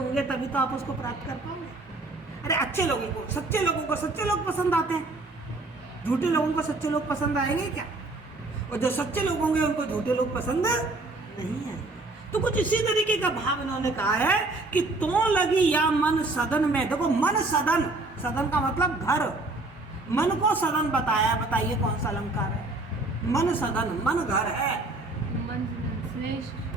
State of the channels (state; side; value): quieter; left; 3.1 dB